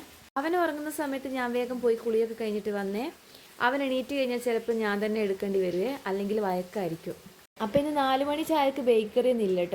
അവൻ ഉറങ്ങുന്ന സമയത്ത് ഞാൻ വേഗം പോയി കുളിയൊക്കെ കഴിഞ്ഞിട്ട് വന്നേ. അവൻ എണീറ്റ് കഴിഞ്ഞാൽ ചിലപ്പോൾ ഞാൻ തന്നെ എടുക്കേണ്ടി വരുവേ, അല്ലെങ്കിൽ വഴക്കായിരിക്കും. അപ്പോൾ ഇന്ന് 4 മണി ചായക്ക് ബേക്കറി ഒന്നും ഇല്ല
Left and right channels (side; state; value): both; identical; correlation 1.00